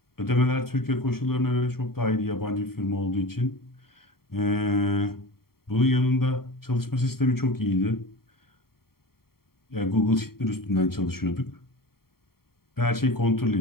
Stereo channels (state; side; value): late; right; 0.93 ms